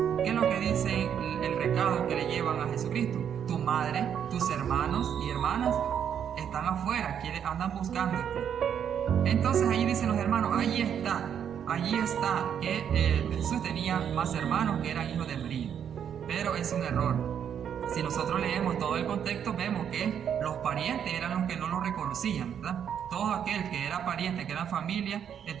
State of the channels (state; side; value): quieter; left; 8.6 dB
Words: ¿qué es lo que dice el recado que le llevan a Jesucristo? Tu madre, tus hermanos y hermanas están afuera, andan buscándote. Entonces ahí dicen los hermanos, allí está, que Jesús tenía más hermanos que eran hijos de María. Pero es un error. Si nosotros leemos todo el contexto, vemos que los parientes eran los que no lo reconocían, ¿verdad? Todo aquel que era pariente, que era familia,